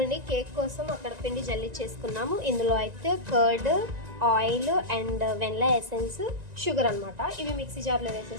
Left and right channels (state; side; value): late; left; 1.9 ms